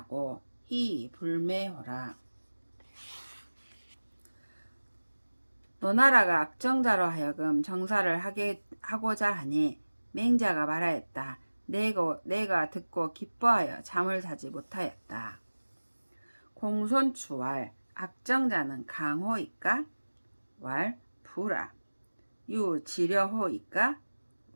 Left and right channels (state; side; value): inverted; both; correlation -1.00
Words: 희 불매호라. 노나라가 악정자로 하여금 정사를 하고자 하니 맹자가 말하였다. 내가 듣고 기뻐하여 잠을 자지 못하였다. 공손추왈 악정자는 강호이까? 왈 부라. 유지려호이까?